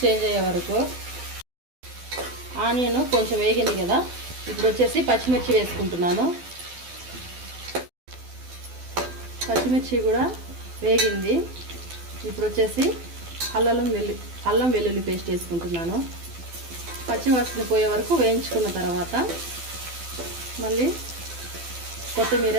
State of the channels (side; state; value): left; late; 12 ms